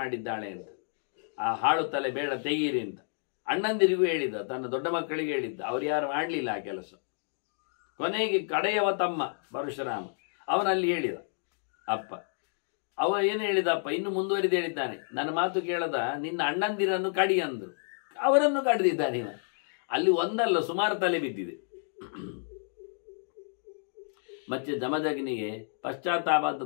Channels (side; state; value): right; silent; digital silence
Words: ಅಂತ. ಆ ಹಾಳು ತಲೆ ಬೇಡ, ತೆಗೀರಿ ಅಂತ ಅಣ್ಣಂದಿರಿಗೂ ಹೇಳಿದ್ದ, ತನ್ನ ದೊಡ್ಡ ಮಕ್ಕಳಿಗೆ ಹೇಳಿದ್ದ. ಅವ್ರು ಯಾರು ಮಾಡಲಿಲ್ಲ ಆ ಕೆಲಸ. ಕೊನೆಗೆ ಕಡೆಯವ ತಮ್ಮ ಪರಶುರಾಮ ಅವನಲ್ಲಿ ಹೇಳಿದ ಅಪ್ಪ. ಅವ ಏನು ಹೇಳಿದಪ್ಪ, ಇನ್ನು ಮುಂದುವರಿದು ಹೇಳಿದ್ದಾನೆ, ನನ್ನ ಮಾತು ಕೇಳದ ನಿನ್ನ ಅಣ್ಣಂದಿರನ್ನು ಕಡಿ ಅಂದರು. ಅವರನ್ನು ಕಡಿದಿದ್ದಾನೆ ಇವ. ಅಲ್ಲಿ ಒಂದಲ್ಲ ಸುಮಾರು ತಲೆ ಬಿದ್ದಿದೆ. ಮತ್ತೆ ಜಮದಗ್ನಿಗೆ ಪಶ್ಚಾತ್ತಾಪ